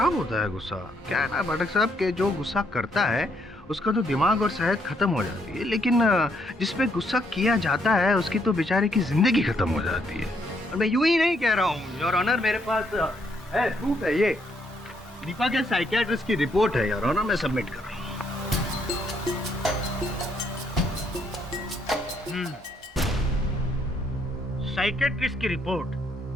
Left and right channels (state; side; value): normal; both; correlation 0.72